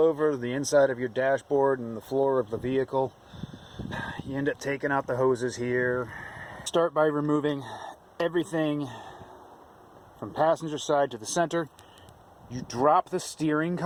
the inside of your dashboard and the floor of the vehicle, you end up taking out the hoses here. Start by removing everything from passenger side to the center. You drop the steering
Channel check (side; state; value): both; identical; correlation 1.00